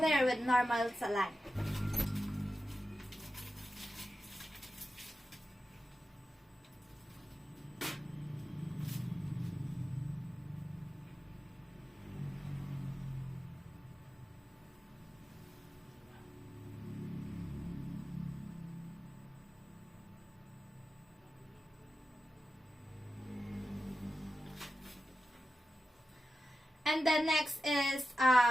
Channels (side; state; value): both; normal; correlation 0.92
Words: with normal saline. And then next is